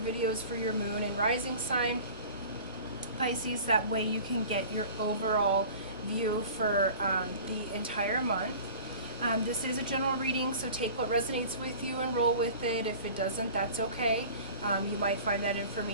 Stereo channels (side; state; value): both; inverted; correlation -0.42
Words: for your Moon and Rising sign, Pisces. That way you can get your overall view for the entire month. This is a general reading, so take what resonates with you and roll with it. If it doesn't, that's okay. You might find that